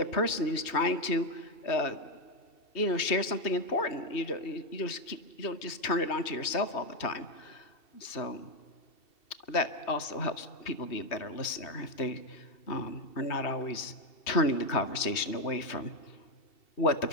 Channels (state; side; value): late; right; 2.7 ms